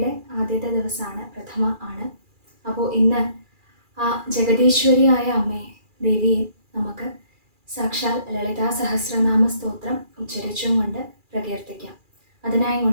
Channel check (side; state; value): left; late; 2.4 ms